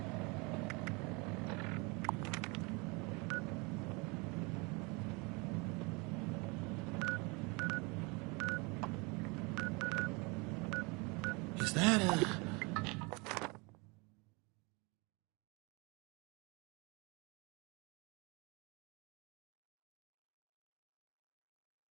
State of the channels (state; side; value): quieter; left; 28.2 dB